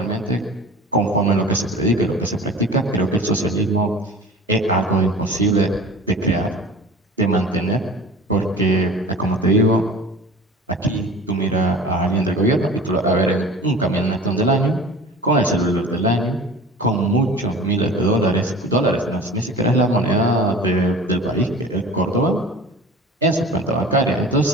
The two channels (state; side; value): normal; both; correlation 0.40